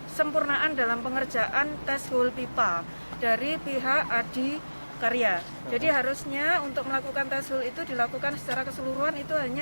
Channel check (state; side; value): inverted; both; correlation -1.00